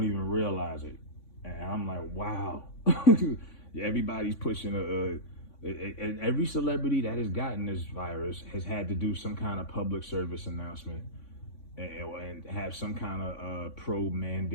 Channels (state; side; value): late; right; 3.5 ms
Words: even realize it. And I'm like, wow. Everybody's pushing Every celebrity that has gotten this virus has had to do some kind of public service announcement and have some kind of pro